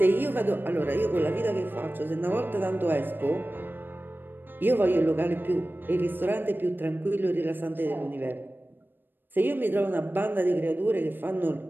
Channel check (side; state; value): left; late; 0.095 ms